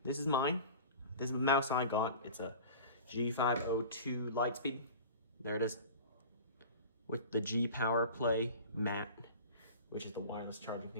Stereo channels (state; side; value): inverted; both; correlation -0.38